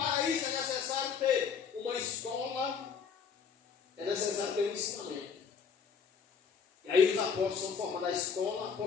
isso é necessário ter uma escola, é necessário ter um ensinamento. E aí os apóstolos são formados a escola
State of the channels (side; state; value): right; quieter; 6.3 dB